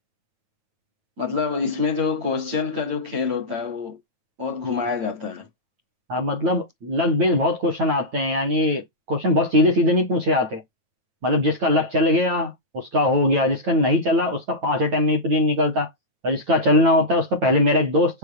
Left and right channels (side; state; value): left; late; 9.1 ms